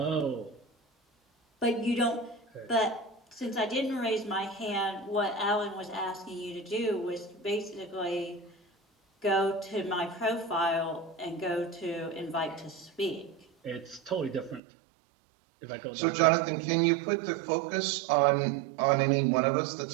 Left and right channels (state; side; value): drops out; left; at 14.6 s